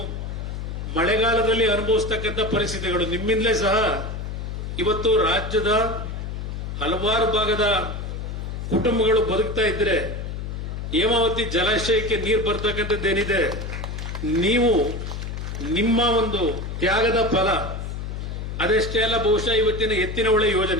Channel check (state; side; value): noise; left; hum, 6 dB below the sound